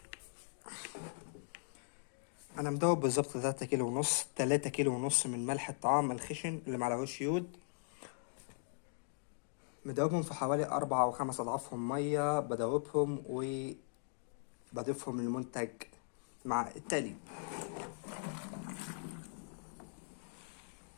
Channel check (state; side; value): silent; right; digital silence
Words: انا مدوب بالظبط 3 كيلو ونص، 3 كيلو ونص من ملح الطعام الخشن اللي معلهوش يود. مدوبهم في حوالي 4 أو 5 أضعافهم مية، بدوبهم وبضيفهم للمنتج مع التقليب.